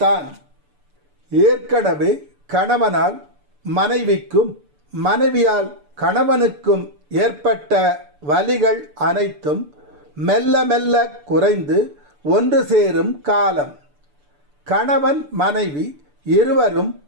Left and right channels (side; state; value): left; late; 6.9 ms